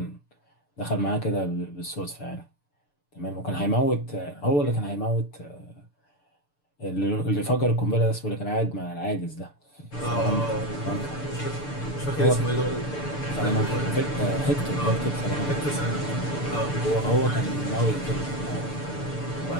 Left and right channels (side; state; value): right; late; 6.8 ms